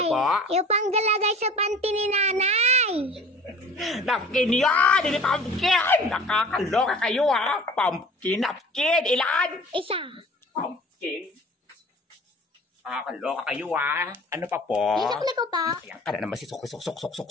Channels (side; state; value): both; normal; correlation 0.45